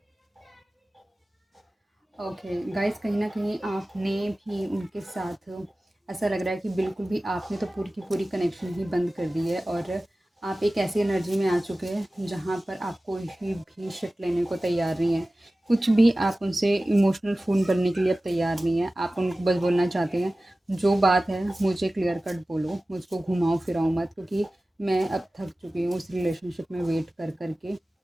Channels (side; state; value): both; normal; correlation 0.97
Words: ओके गाइस, कहीं न कहीं आपने भी उनके साथ ऐसा लग रहा है कि बिल्कुल भी आपने तो पूरी की पूरी कनेक्शन ही बंद कर दी है और आप एक ऐसी एनर्जी में आ चुके हैं जहाँ पर आप कोई भी शिट लेने को तैयार नहीं है। कुछ भी आप उनसे इमोशनल फ़ोन करने के लिए अब तैयार नहीं है। आप उनको बस बोलना चाहते हैं, जो बात है मुझे क्लियर कट बोलो, मुझको घुमाओ फिराओ मत, क्योंकि मैं अब थक चुकी हूँ उस रिलेशनशिप में वेट कर कर के।